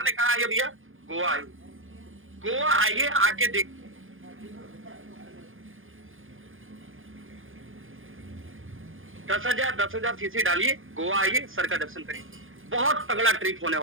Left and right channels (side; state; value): left; late; 0.59 ms